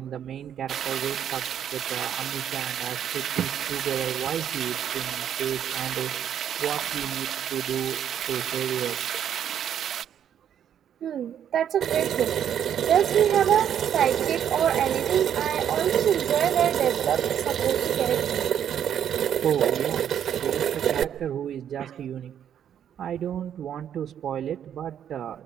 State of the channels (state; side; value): quieter; left; 9.4 dB